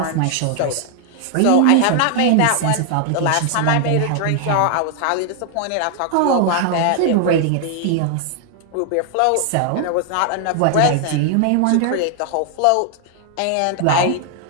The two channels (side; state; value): both; different; correlation 0.00